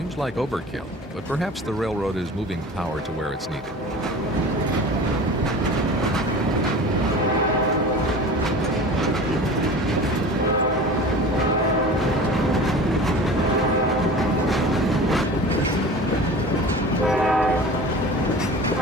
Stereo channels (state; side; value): normal; both; correlation 0.37